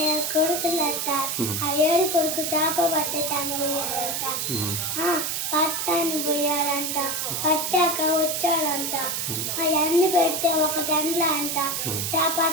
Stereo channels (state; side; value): noise; right; hiss, 1 dB below the sound